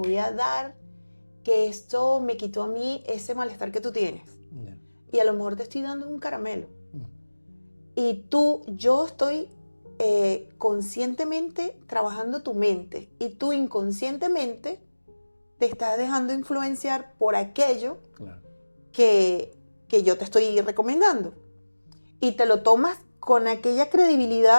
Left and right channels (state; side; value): inverted; both; correlation -1.00